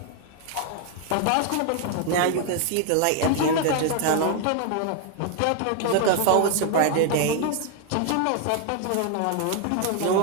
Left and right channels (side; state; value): both; different; correlation 0.00